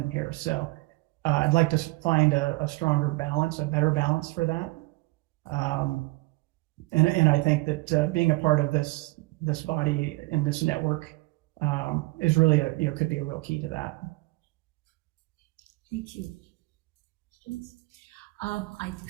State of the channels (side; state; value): left; quieter; 22.9 dB